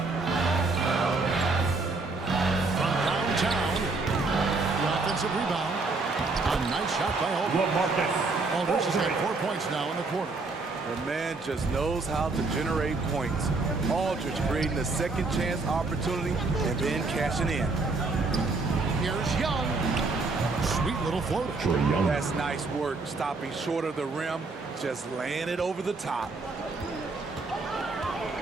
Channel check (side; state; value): left; quieter; 3.7 dB